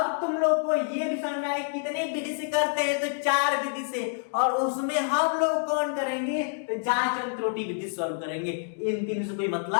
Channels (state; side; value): silent; right; digital silence